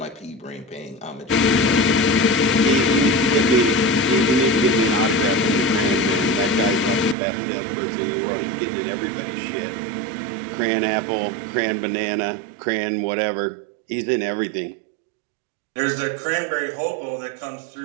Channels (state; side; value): drops out; left; at 7.2 s